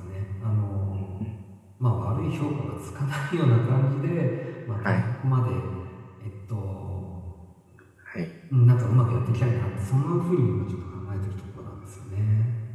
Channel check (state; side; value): identical; both; correlation 1.00